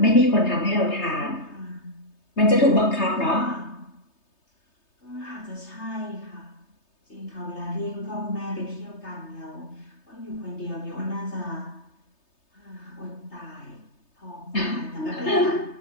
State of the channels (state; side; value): late; right; 3.3 ms